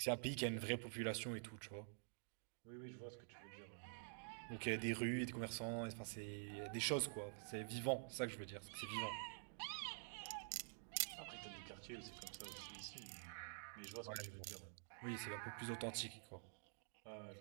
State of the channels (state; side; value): silent; left; digital silence